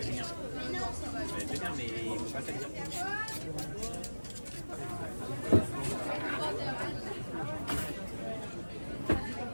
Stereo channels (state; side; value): inverted; both; correlation -1.00